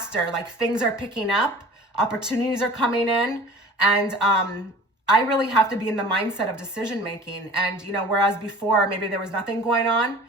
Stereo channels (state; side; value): normal; both; correlation 0.43